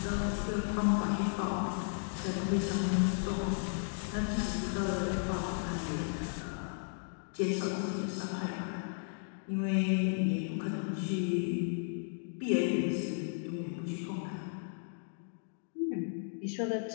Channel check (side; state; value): right; silent; digital silence